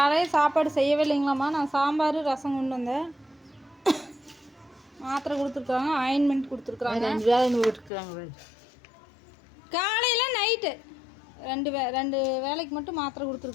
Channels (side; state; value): right; drops out; at 7.9 s